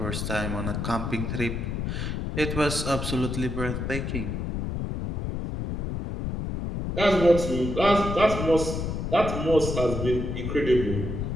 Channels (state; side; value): noise; left; rumble, 3 dB below the sound